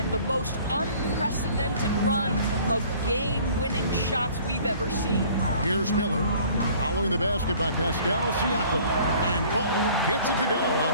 the most unprecedented run of game-winning shots we've ever seen. Here's Miller, following the basket by Pascal Siakam. And Ball gets it to go on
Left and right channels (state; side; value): inverted; both; correlation -0.52